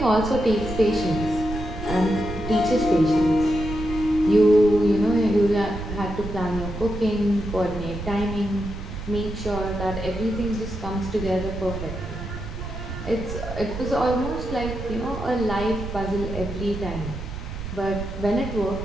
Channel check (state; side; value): noise; right; rumble, 8 dB below the sound